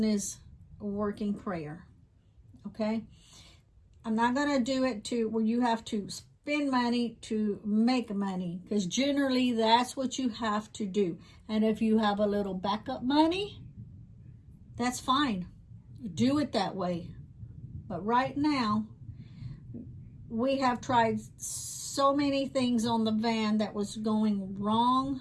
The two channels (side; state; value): both; identical; correlation 1.00